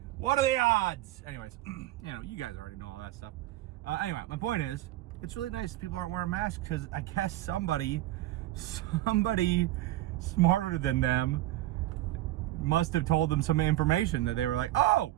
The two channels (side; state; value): left; quieter; 15.5 dB